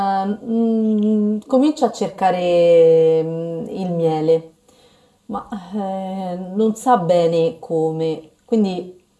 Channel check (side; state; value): both; identical; correlation 1.00